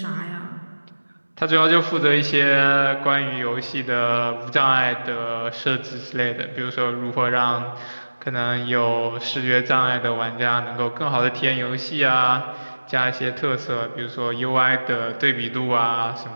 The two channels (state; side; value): inverted; both; correlation -1.00